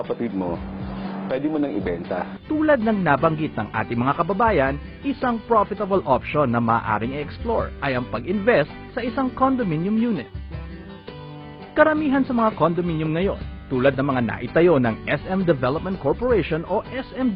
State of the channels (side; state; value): both; identical; correlation 1.00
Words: kapatid mo, pwede mo nang ibenta. Tulad ng nabanggit ng ating mga kababayan, isang profitable option na maaaring i-explore ay ang pag-invest sa isang condominium unit. Karamihan sa mga condominium ngayon, tulad ng mga naitayo ng SM Development Corporation o